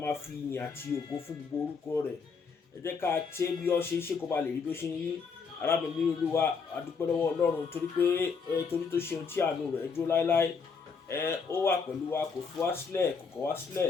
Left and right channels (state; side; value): quieter; right; 5.4 dB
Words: máa fi ìyìn àti ògo fún gbogbo orúkọ rẹ̀ ẹ jẹ́ ká ṣe bí ọ ṣe ń ṣe kó ba lè rí bí ó ṣe ń rí arábìnrin Olúwa adúpẹ́ lọ́wọ́ Ọlọ́run torí tó ṣe ohun tí àánú rẹ̀ dúró láéláé ó wà pẹ̀lú wa kò fi wá sílẹ̀ kò kọ̀ wá